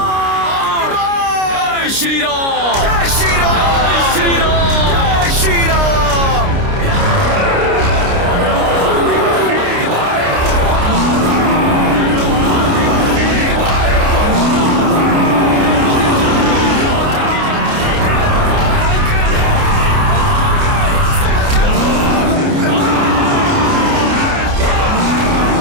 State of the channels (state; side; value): late; left; 29 ms